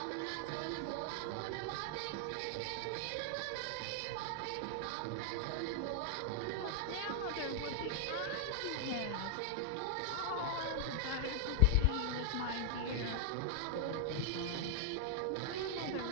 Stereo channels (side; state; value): both; different; correlation 0.00